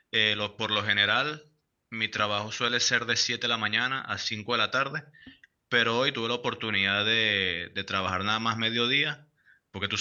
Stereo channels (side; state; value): both; identical; correlation 1.00